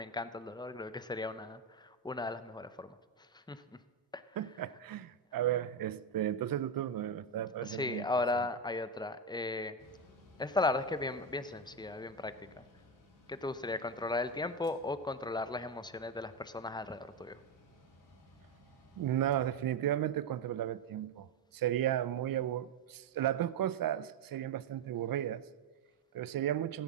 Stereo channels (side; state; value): left; quieter; 3.7 dB